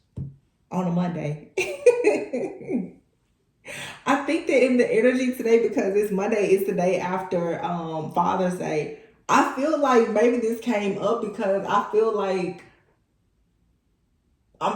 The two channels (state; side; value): identical; both; correlation 1.00